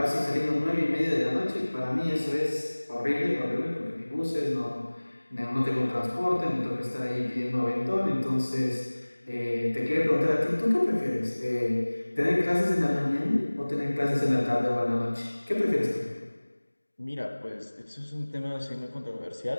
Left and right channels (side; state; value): both; inverted; correlation -1.00